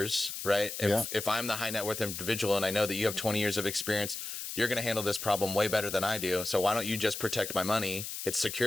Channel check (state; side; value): noise; left; hiss, 7 dB below the sound